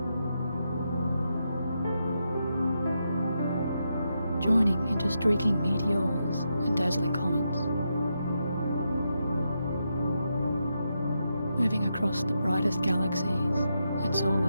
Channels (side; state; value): both; inverted; correlation -0.84